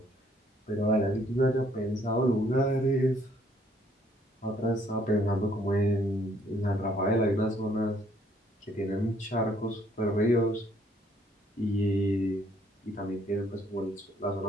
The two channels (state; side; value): normal; both; correlation 0.65